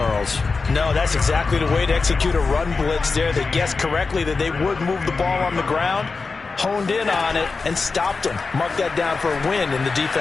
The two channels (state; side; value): quieter; right; 4.3 dB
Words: No, that's exactly the way to execute a run blitz there. They guessed correctly that they would move the ball on the ground, honed in on it, and stopped him. Mark that down for a win in the